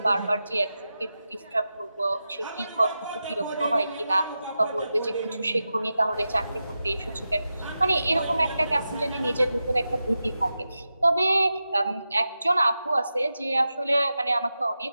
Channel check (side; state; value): both; inverted; correlation -0.91